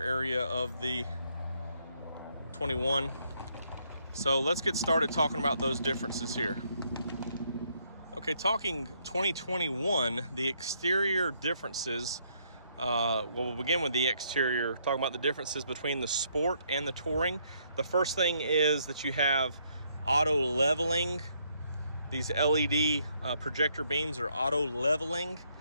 of the 21. So let's get started talking about those differences here. Okay, talking 2021, the exterior differences, we'll begin with the exterior, talking about the differences between the Sport and the Touring. The first thing is that you have auto leveling. These LED projector beams are auto leveling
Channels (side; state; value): both; inverted; correlation -0.71